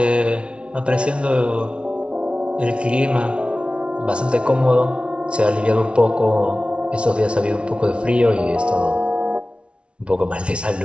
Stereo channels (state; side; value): late; left; 0.059 ms